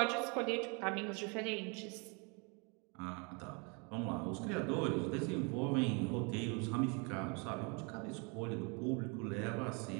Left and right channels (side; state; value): left; quieter; 32.9 dB